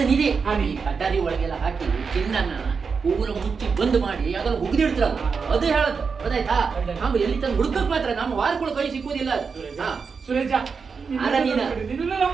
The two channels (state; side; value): quieter; left; 5.4 dB